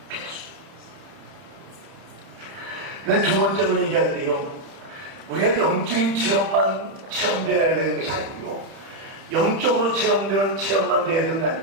필수. 두 번째로 얘기할 때요 우리가 영적인 체험되어야 되는 것이 아니고요 영적으로 체험되는 체험만 되어야 되는 게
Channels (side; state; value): left; late; 30 ms